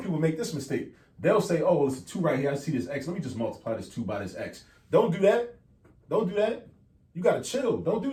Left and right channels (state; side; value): identical; both; correlation 1.00